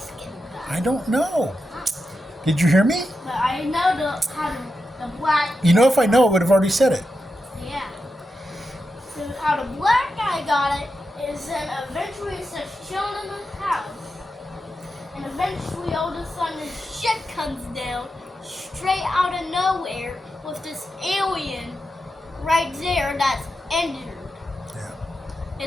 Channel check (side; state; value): both; normal; correlation 0.88